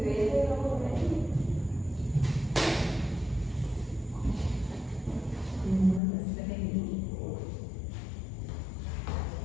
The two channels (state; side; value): drops out; right; at 6.0 s